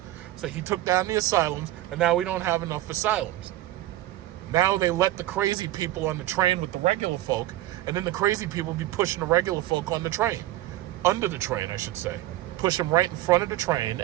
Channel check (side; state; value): left; quieter; 15.2 dB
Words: So he took down the asylums, and now we don't have enough asylums. Now they let the crazy people on the train with the regular folk, and then the crazy people be pushing the regular folk on the train. Under the train, I should say. Push them right in front of the train,